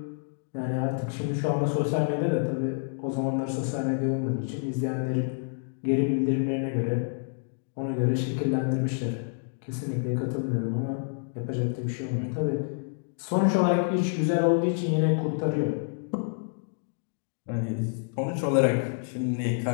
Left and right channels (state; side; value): silent; right; digital silence